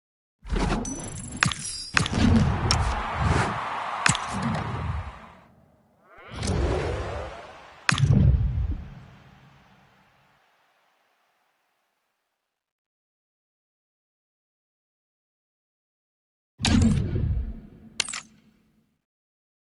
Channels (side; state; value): both; identical; correlation 1.00